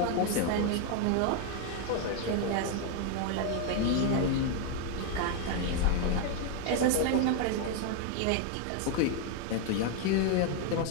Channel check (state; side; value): different; both; correlation 0.01